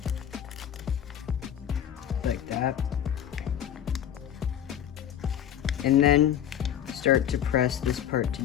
Like that. And then start to press this part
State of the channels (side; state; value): right; quieter; 10.1 dB